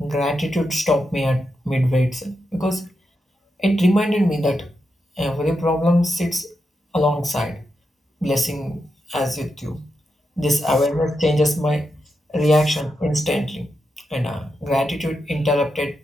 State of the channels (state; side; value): normal; both; correlation 0.86